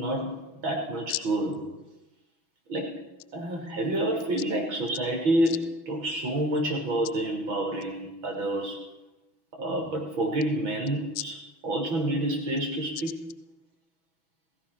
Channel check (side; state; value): left; late; 6.1 ms